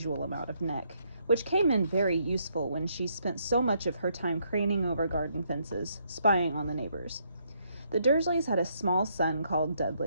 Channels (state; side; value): inverted; both; correlation -0.73